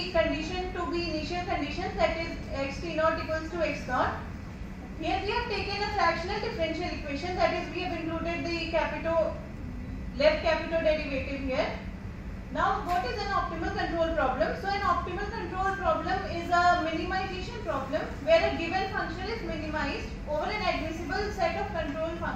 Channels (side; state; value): both; identical; correlation 1.00